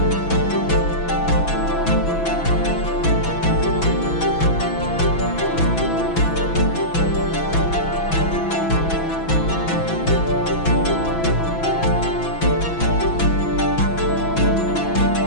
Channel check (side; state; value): right; late; 6.0 ms